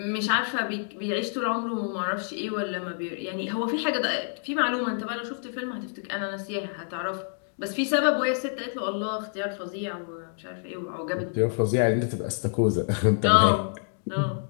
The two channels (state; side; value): silent; right; digital silence